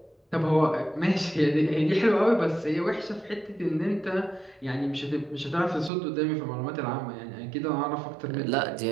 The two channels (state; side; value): drops out; left; at 5.9 s